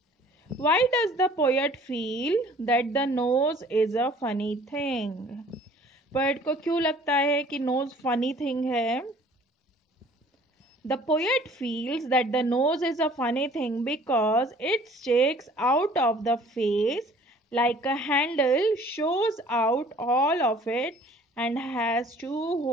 Why does the poet feel that the nose is a funny thing? Poet को क्यों लगता है कि knows funny thing है? The poet feels that the nose is a funny thing because it sticks out of the face like a handle, shows out all of it and has two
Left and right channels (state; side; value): normal; both; correlation 0.53